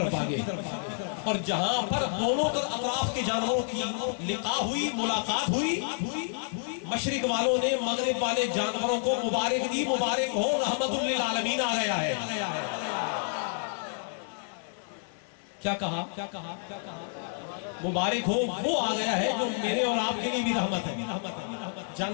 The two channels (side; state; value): right; silent; 58 dB below the other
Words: بھاگے، اور جہاں پر دونوں اطراف کے جانوروں کی لقاء ہوئی، ملاقات ہوئی، مشرق والوں نے مغرب والے جانوروں کو مبارک دی، مبارک ہو رحمت للعالمین آ گیا ہے. کیا کہا؟ مبارک ہو وہ آ گیا ہے جو میرے اور آپ کے لیے بھی رحمت ہے.